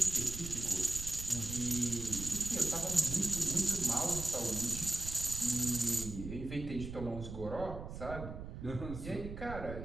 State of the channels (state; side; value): noise; right; rumble, 9 dB below the sound